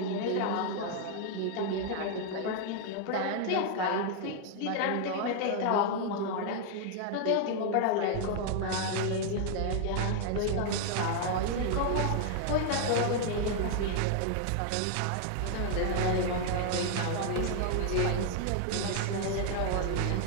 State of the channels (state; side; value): different; both; correlation 0.00